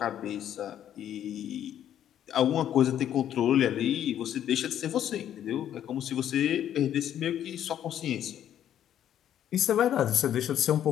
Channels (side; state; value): right; quieter; 10.6 dB